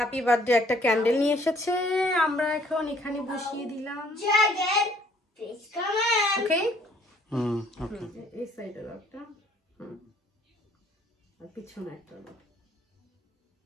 বার্থডে একটা ক্যান্ডেল নিয়ে এসেছে, আমরা এখন এখানে বসিয়ে দিলাম। ওকে, ওকে। এই সাইডের একটা, আর পিছনে একটা।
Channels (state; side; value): normal; both; correlation 0.61